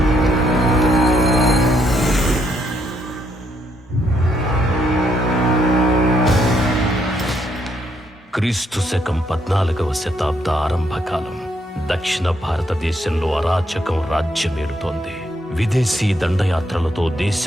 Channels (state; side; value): normal; both; correlation 0.74